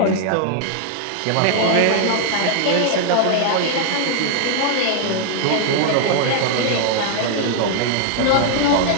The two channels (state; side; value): different; both; correlation 0.00